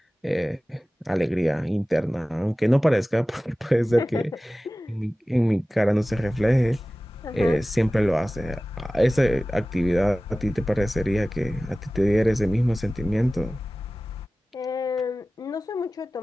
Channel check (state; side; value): normal; both; correlation 0.97